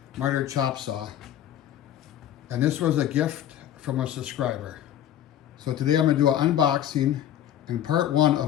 miter chop saw. And this was a gift from a subscriber. So today I'm going to do an unboxing and part one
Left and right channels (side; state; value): right; quieter; 11.2 dB